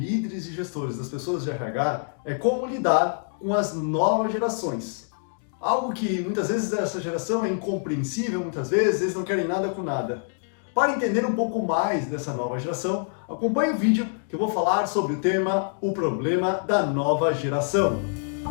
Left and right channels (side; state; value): right; silent; digital silence